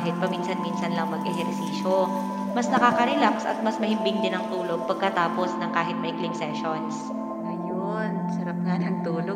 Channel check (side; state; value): both; identical; correlation 1.00